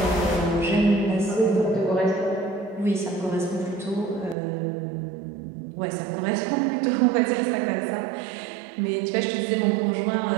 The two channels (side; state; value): left; drops out; at 4.4 s